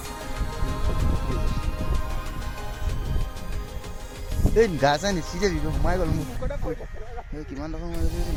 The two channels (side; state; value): both; identical; correlation 1.00